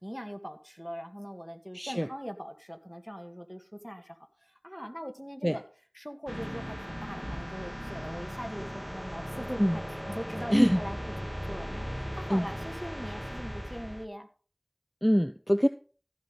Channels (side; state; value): both; identical; correlation 1.00